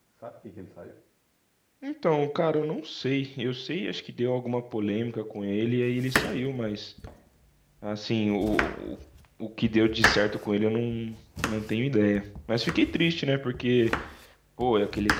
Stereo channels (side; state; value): both; identical; correlation 1.00